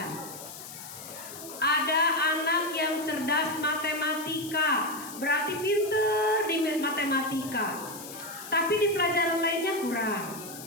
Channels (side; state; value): left; noise; hiss, 13 dB below the sound